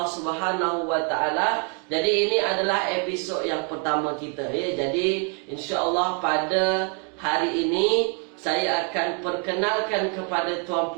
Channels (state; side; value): quieter; left; 38.7 dB